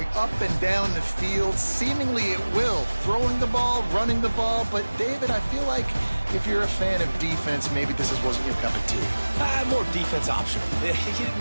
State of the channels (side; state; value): both; inverted; correlation -1.00